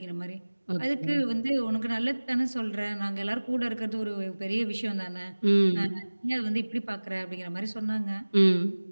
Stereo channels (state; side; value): inverted; both; correlation -1.00